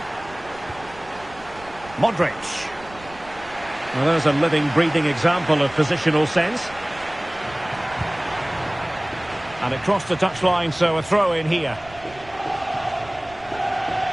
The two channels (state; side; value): noise; right; rumble, 21 dB below the sound